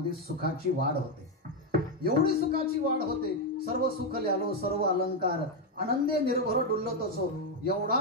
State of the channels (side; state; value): both; normal; correlation 0.04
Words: सुखाची वाढ होते. एवढी सुखाची वाढ होते, सर्व सुख ल्यालो सर्व अलंकार, आनंदे निर्भर डुलतोसो. एवढा